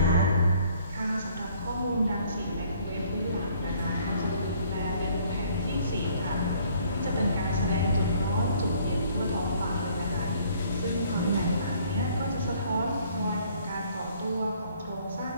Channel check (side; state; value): both; inverted; correlation -0.60